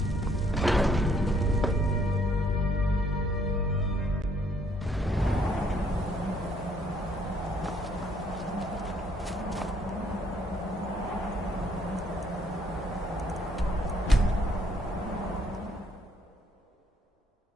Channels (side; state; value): both; normal; correlation 0.67